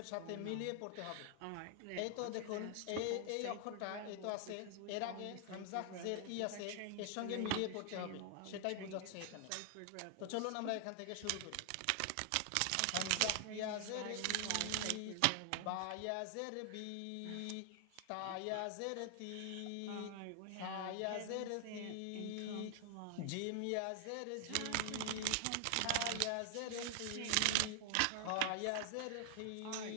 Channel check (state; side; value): different; both; correlation 0.00